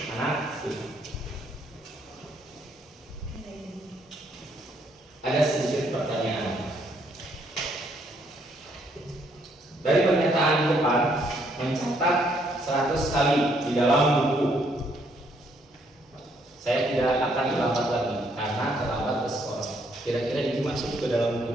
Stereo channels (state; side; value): normal; both; correlation 0.70